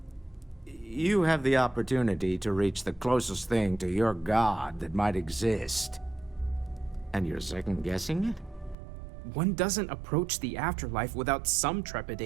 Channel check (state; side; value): drops out; left; at 8.8 s